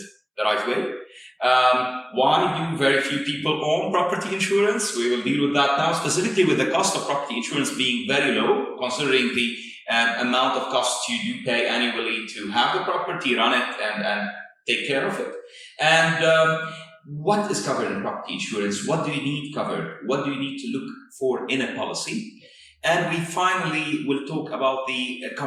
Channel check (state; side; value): identical; both; correlation 1.00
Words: the right way. Why do very few people own property insurance? We will deal with that now, specifically with the cost of property insurance being very low, considering the amount of costs you do pay annually to have the property, run it, and take care of it. And what is covered in property insurance? What do you need covered? What do you need to look for in a policy? And we finally will talk about the